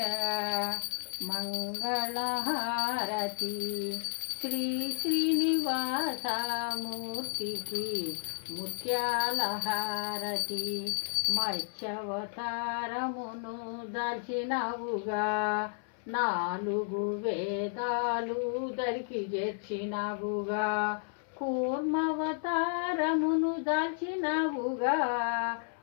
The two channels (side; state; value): right; silent; 56 dB below the other